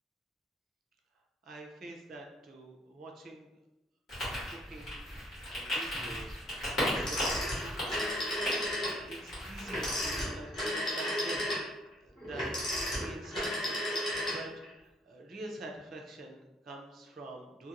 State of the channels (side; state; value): both; normal; correlation 0.63